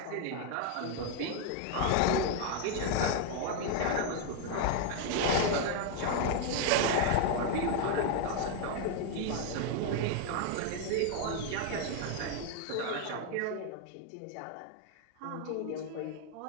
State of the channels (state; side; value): different; both; correlation 0.00